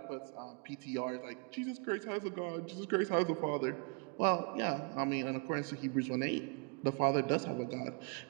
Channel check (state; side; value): quieter; left; 36.5 dB